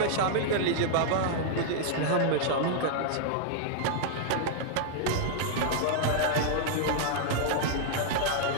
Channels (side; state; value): both; different; correlation -0.01